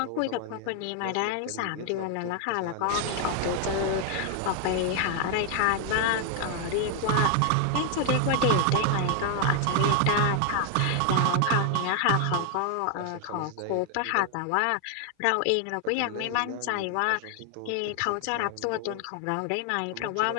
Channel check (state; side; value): different; both; correlation 0.00